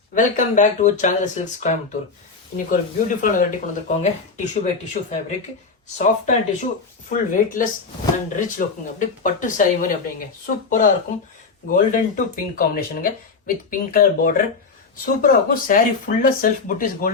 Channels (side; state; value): right; quieter; 4.6 dB